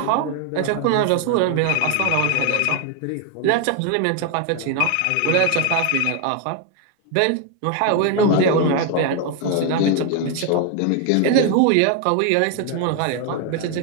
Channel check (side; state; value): both; different; correlation 0.01